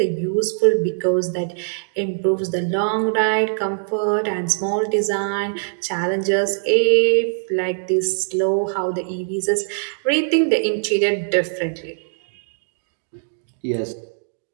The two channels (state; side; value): silent; left; digital silence